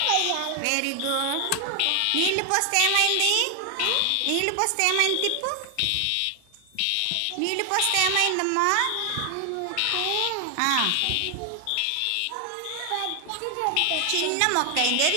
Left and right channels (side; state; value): both; different; correlation 0.00